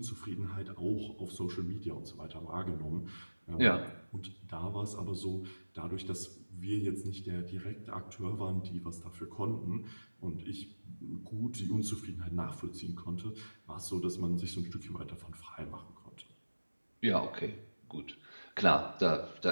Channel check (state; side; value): inverted; both; correlation -1.00